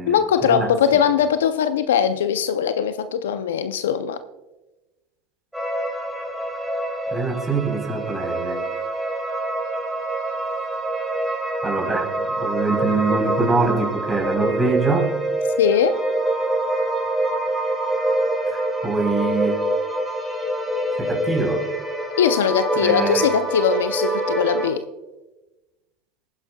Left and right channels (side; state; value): both; normal; correlation 0.25